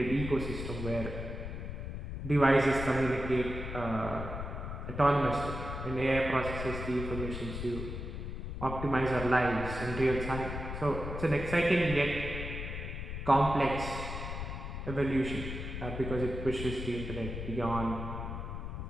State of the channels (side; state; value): left; noise; rumble, 6 dB below the sound